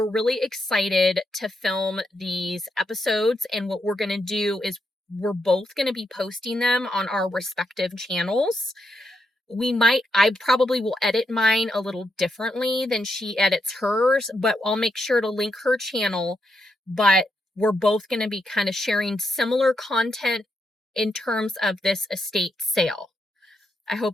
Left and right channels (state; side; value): normal; both; correlation 0.82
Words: really excited to film these episodes, and what we're going to do is we're both going to be posting them on our respective channels. I probably will edit mine a little differently than she edits hers, but I'll make sure to link her channel. But we're both going to be kind of sharing similar content in terms of this estate sale. I